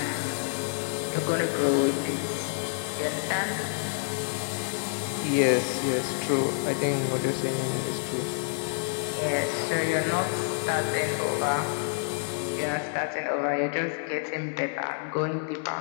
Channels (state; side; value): silent; right; 59 dB below the other